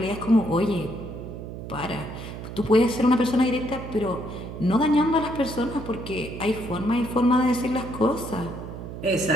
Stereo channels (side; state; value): right; noise; hum, 10 dB below the sound